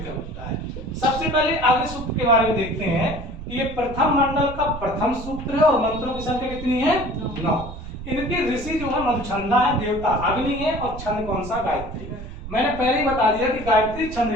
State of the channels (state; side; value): noise; right; rumble, 11 dB below the sound